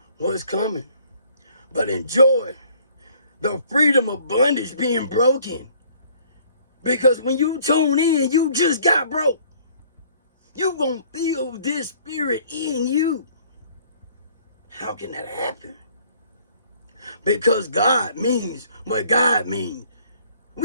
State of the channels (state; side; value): inverted; both; correlation -0.58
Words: what's coming. But enjoy the freedom of bondage being broken. Because when you tune in, you just got broke. You gonna feel this spirit in you. How can that happen? Because God means what God means.